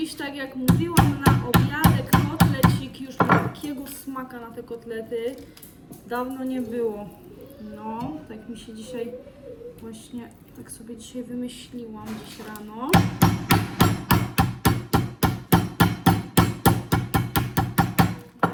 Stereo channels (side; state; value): both; identical; correlation 1.00